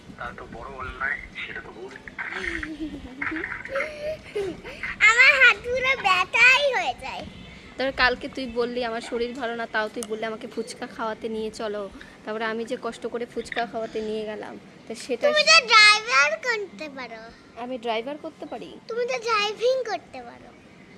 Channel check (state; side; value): identical; both; correlation 1.00